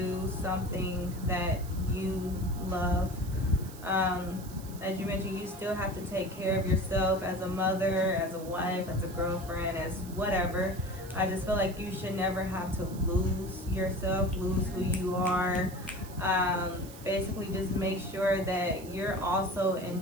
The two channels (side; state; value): right; noise; hiss, 18 dB below the sound